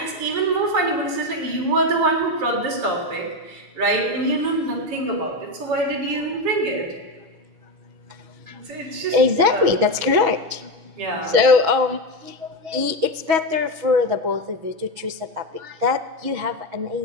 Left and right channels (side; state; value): left; late; 6.2 ms